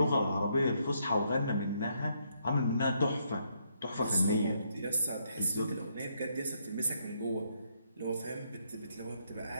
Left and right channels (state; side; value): inverted; both; correlation -0.74